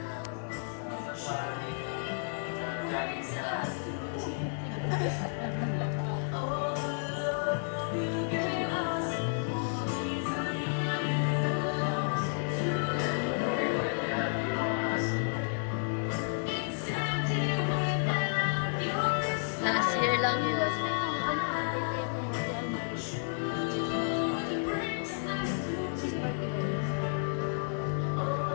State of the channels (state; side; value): silent; right; digital silence